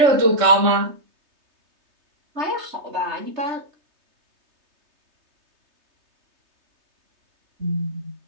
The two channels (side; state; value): left; late; 3.3 ms